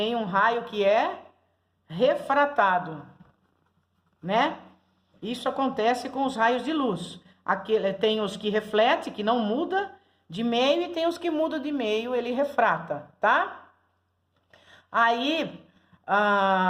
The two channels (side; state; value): both; identical; correlation 1.00